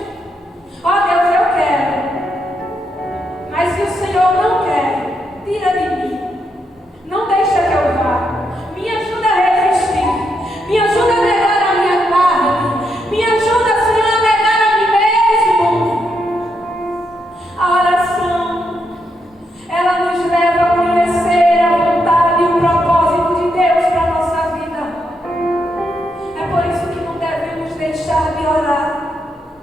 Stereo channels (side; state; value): both; normal; correlation 0.80